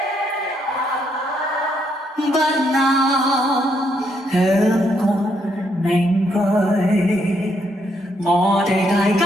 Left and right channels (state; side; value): normal; both; correlation 0.75